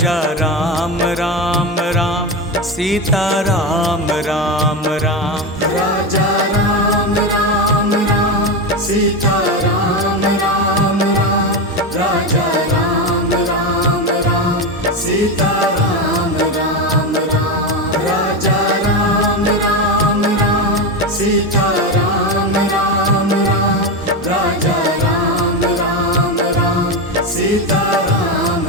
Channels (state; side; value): normal; both; correlation 0.15